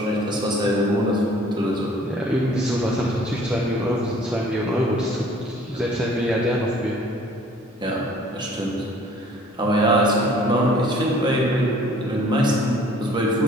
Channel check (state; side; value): normal; both; correlation 0.54